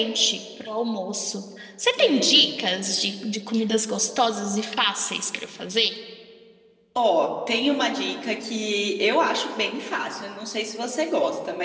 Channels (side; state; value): both; identical; correlation 1.00